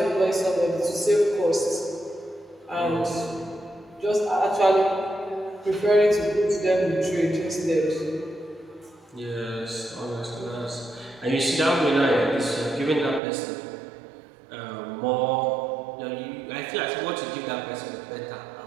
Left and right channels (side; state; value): left; drops out; at 13.2 s